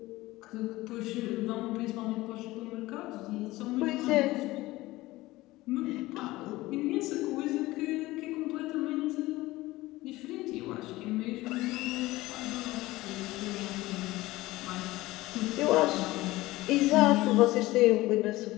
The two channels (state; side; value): quieter; right; 18.7 dB